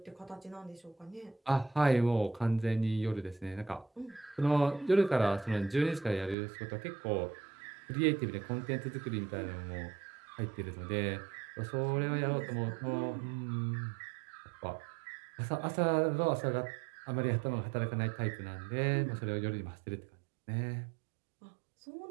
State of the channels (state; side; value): drops out; left; at 6.4 s